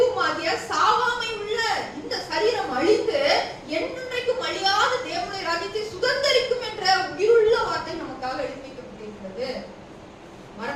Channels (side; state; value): both; identical; correlation 1.00